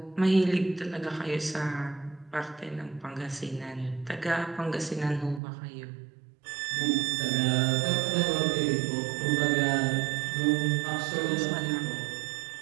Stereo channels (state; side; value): drops out; left; at 5.4 s